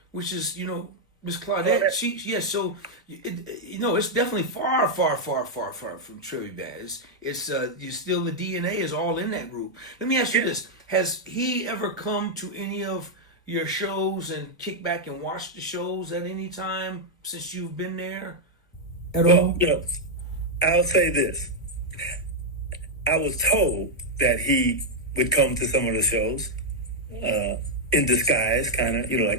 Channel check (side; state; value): both; normal; correlation -0.02